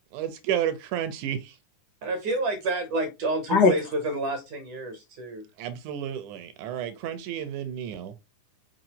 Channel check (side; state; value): left; late; 9.9 ms